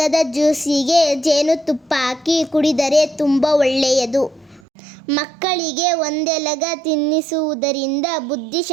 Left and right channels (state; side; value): drops out; left; at 4.6 s